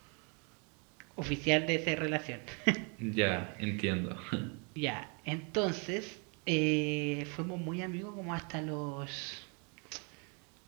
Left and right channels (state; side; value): quieter; left; 35.4 dB